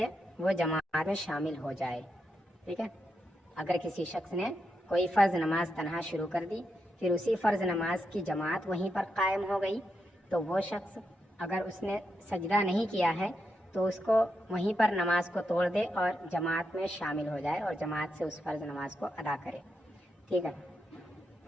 وہ جماعت میں شامل ہو جائے، ٹھیک ہے۔ اگر کسی شخص نے کوئی فرض نماز تنہا شروع کر دی، پھر اسی فرض نماز کی جماعت وہیں پر قائم ہو گئی، تو وہ شخص اگر اس نے سجدہ نہیں کیا ہے تو اس کو وہیں پر نماز کو توڑ دے اور جماعت میں شامل ہو جائے اور جماعت سے اس فرض نماز کو ادا کرے، ٹھیک ہے۔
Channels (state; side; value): normal; both; correlation 0.84